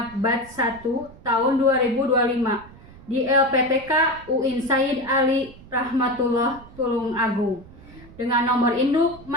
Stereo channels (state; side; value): noise; right; rumble, 21 dB below the sound